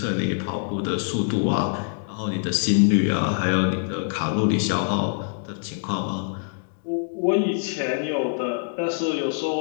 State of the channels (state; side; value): silent; right; digital silence